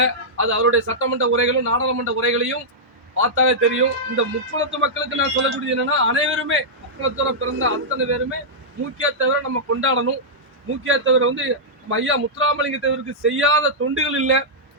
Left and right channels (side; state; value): both; normal; correlation -0.11